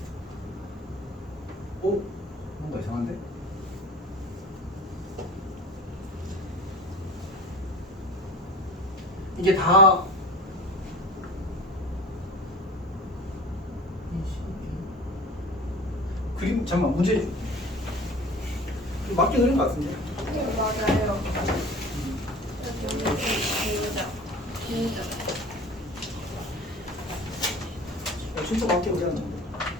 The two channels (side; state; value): both; normal; correlation 0.40